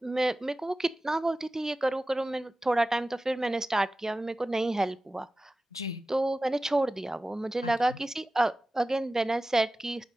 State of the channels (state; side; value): normal; both; correlation 0.96